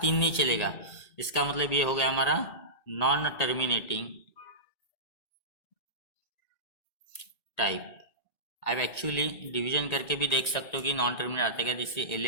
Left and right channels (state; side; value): late; right; 1.8 ms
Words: 3 नहीं चलेगा। इसका मतलब ये हो गया हमारा नॉन टर्मिनेटिंग टाइप। अब एक्चुअली डिवीजन करके भी देख सकते हो कि नॉन टर्मिनेट आता है क्या? जैसे